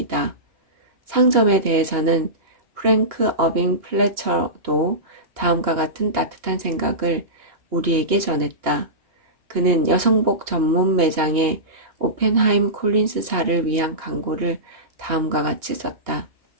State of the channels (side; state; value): left; late; 2.9 ms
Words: 상점에 대해서는 프랭크 어빙 플래처도 다음과 같은 따뜻한 생각을 우리에게 전했다. 그는 여성복 전문 매장의 오펜하임 콜린스사를 위한 광고를 다음과 같이 썼다.